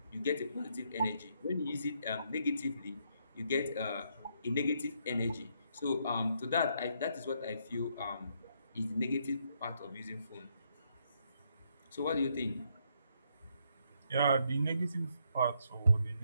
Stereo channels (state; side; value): inverted; both; correlation -0.74